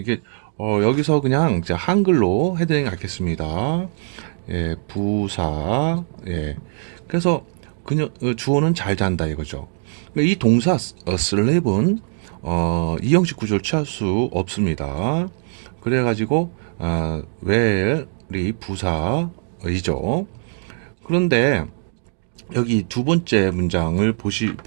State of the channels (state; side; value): silent; left; 63 dB below the other